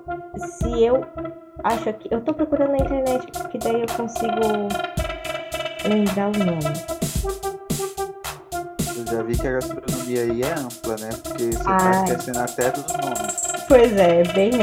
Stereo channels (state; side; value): identical; both; correlation 1.00